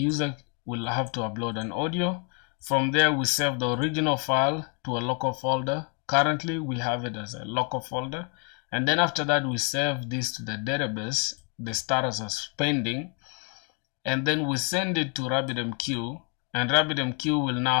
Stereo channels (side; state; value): right; quieter; 37.9 dB